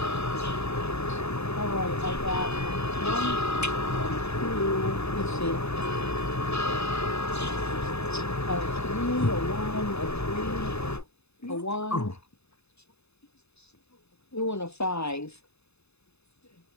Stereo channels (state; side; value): late; right; 0.80 ms